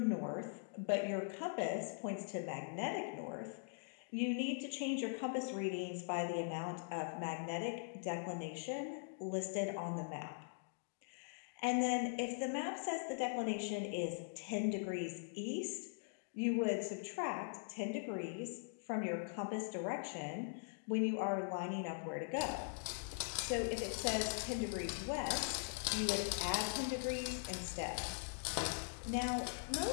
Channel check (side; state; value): right; silent; digital silence